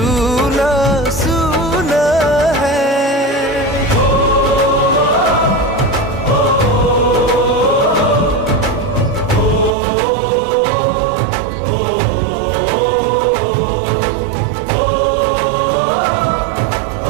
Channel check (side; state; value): left; drops out; at 9.8 s